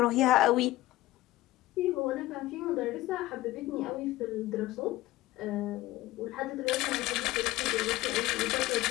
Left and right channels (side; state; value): right; quieter; 17.0 dB